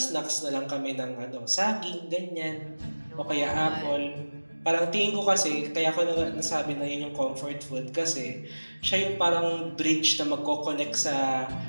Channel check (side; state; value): both; inverted; correlation -1.00